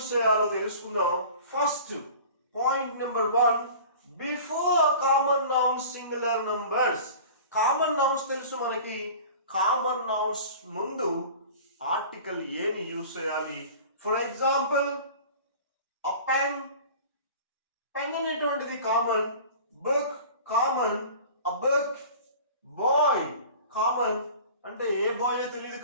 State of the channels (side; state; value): both; inverted; correlation -0.41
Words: చేయాలో తెలుసుకుందాం. First point number 1, before common nouns singular numbers. Common nouns తెలుసు మనకి. కామన్ నౌన్స్ ముందు ఆర్టికల్ ఏని యూజ్ చేయాలి. For example a pen, pen అనేటువంటిది common. Book common. A book. Bye common, అంటే ఏ బాయ్ తెలియదు